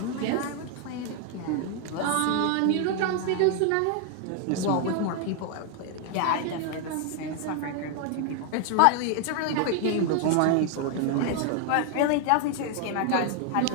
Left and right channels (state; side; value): different; both; correlation 0.00